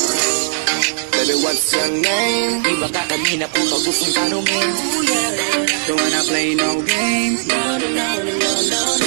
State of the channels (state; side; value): silent; left; 68 dB below the other